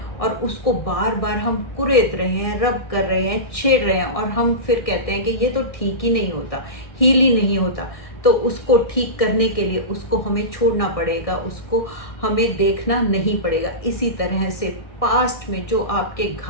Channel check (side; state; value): right; late; 1.6 ms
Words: और उसको बार बार हम कुरेद रहे हैं, रब कर रहे हैं, छेड़ रहे हैं, और हम फिर कहते हैं कि ये तो ठीक ही नहीं होता, हील ही नहीं होता। तो उसको ठीक करने के लिए उसको हमें छोड़ना पड़ेगा, उसको हमें देखना नहीं पड़ेगा। इसी तरह से पास्ट में जो आपके